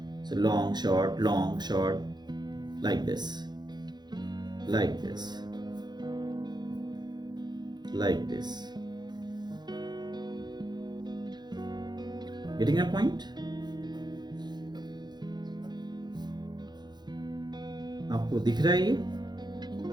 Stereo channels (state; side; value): late; left; 0.21 ms